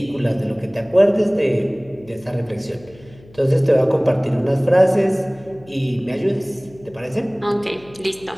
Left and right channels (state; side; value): noise; left; hum, 24 dB below the sound